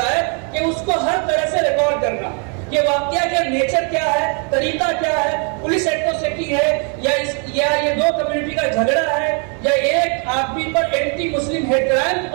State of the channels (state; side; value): quieter; left; 38.5 dB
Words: ہے کہ اس کو ہر طرح سے ریکارڈ کرنا، کہ واقعہ کا نیچر کیا ہے، طریقہ کیا ہے، پولیس ایٹروسٹی ہے یا یہ 2 کمیونٹی کا جھگڑا ہے، یا ایک آدمی پر اینٹی مسلم ہیٹ کرائم کے